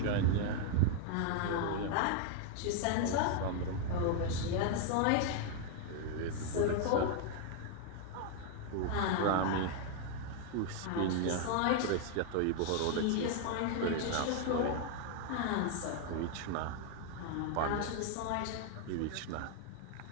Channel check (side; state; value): both; different; correlation 0.00